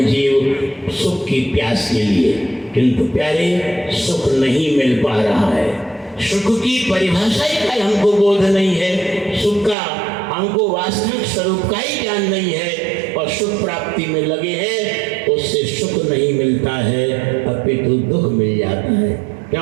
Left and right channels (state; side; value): drops out; left; at 9.8 s